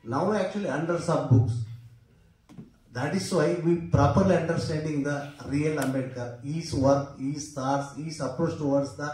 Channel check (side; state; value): both; identical; correlation 1.00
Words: Now actually hundreds of books. That is why we properly understanding the real Ambedkar, his work, his thoughts, his approach towards